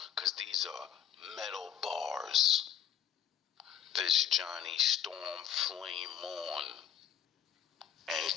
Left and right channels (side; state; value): right; quieter; 9.4 dB